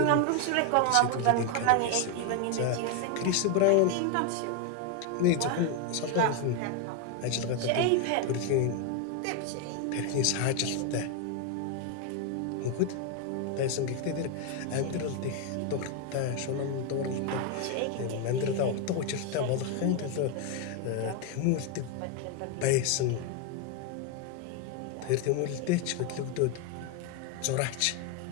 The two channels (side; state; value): both; different; correlation 0.01